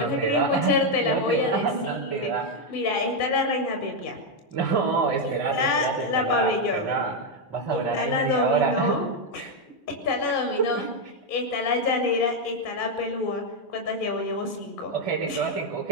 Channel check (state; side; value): late; right; 2.4 ms